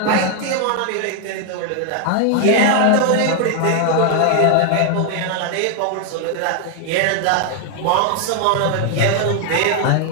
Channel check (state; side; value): different; both; correlation 0.00